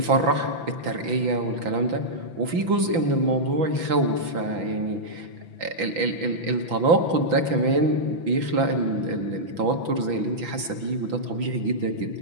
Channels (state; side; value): late; left; 6.0 ms